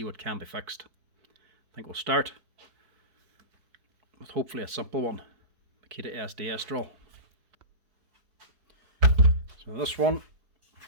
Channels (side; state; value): left; late; 4.6 ms